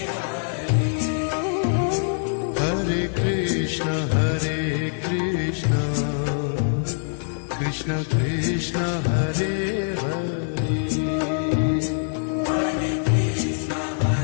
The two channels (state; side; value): silent; right; digital silence